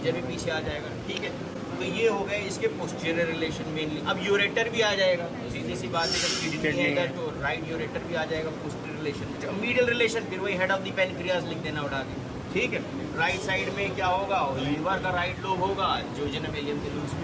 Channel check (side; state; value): both; identical; correlation 1.00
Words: भी पीछे आ जाएगा, ठीक है। तो ये हो गए इसके पोस्टीरियर रिलेशन मेनली। अब यूरेटर भी आ जाएगा, सीधी सी बात है, जब किडनी है इधर तो राइट यूरेटर भी आ जाएगा पोस्टीरियर रिलेशन। मीडियल रिलेशन फिर वही हेड ऑफ द पेनक्रियाज लिख देना उठा के, ठीक है। राइट साइड में क्या होगा, लीवर का राइट लोब होगा, जोजेनम एलियम के लूप्स